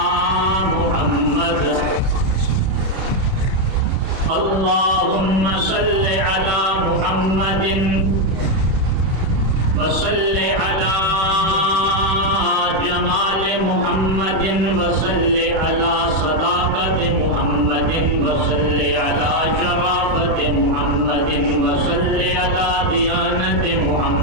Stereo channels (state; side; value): late; left; 31 ms